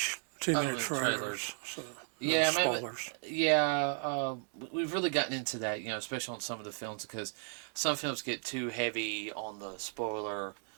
too many trailers. So, yeah, maybe. spoilers. Yeah, we've really gotten into that, especially on some of the films because some films get too heavy on the spoiler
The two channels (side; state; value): left; silent; 55 dB below the other